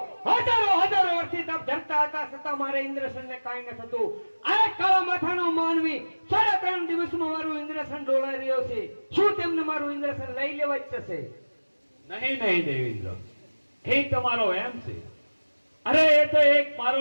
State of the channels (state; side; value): inverted; both; correlation -1.00